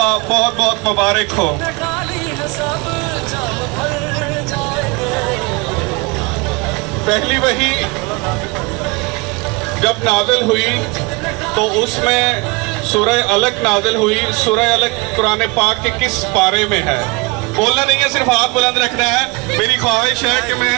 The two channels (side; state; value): left; quieter; 26.4 dB